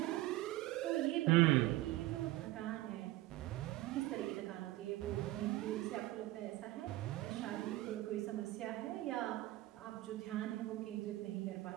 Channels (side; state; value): left; quieter; 17.5 dB